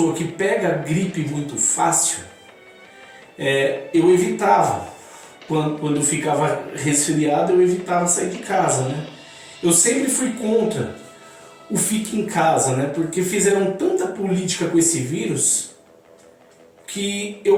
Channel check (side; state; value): both; identical; correlation 1.00